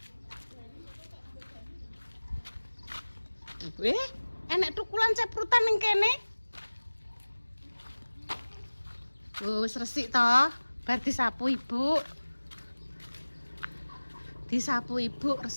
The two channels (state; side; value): inverted; both; correlation -1.00